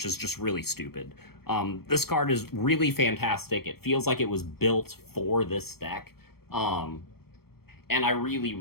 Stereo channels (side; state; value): right; late; 0.95 ms